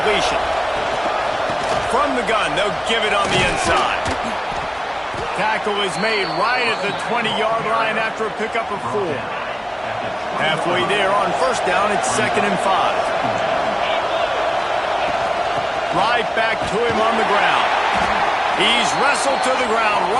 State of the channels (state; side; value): identical; both; correlation 1.00